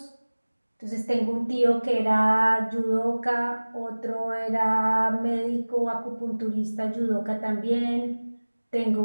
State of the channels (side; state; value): both; inverted; correlation -1.00